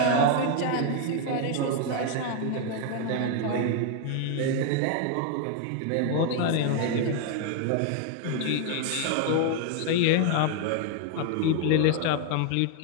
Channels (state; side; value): different; both; correlation 0.00